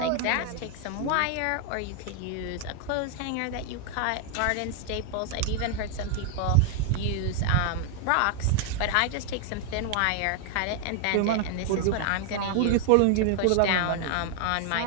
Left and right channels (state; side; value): different; both; correlation 0.00